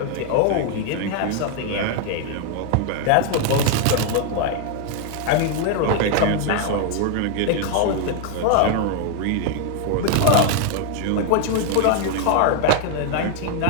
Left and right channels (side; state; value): both; different; correlation 0.00